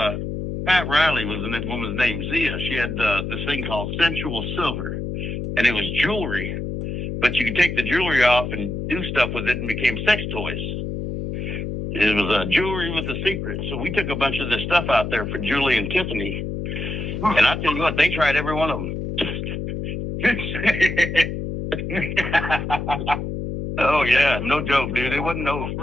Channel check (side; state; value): left; noise; hum, 4 dB below the sound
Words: Pat Riley was the woman's name. Zia. She had this thing called Sensual Silver. And it was jewelry, but you could take the jewelry off and do stuff with it, and became sex toys. It was jewelry with a secret. So we took a bunch of this stuff out there for Julie and Tiffany, and I tell you what, they tried every one of them. Oh yeah, no joke, dude. It wasn't no